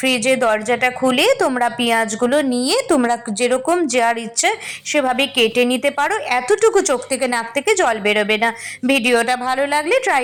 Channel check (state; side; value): identical; both; correlation 1.00